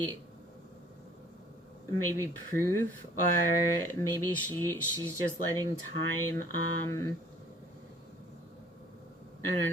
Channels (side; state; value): both; normal; correlation 0.54